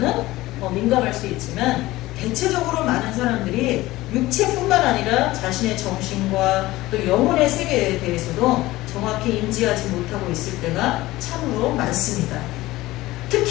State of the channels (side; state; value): right; quieter; 18.0 dB